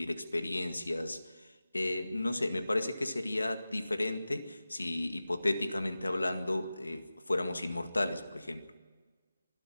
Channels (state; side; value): inverted; both; correlation -0.95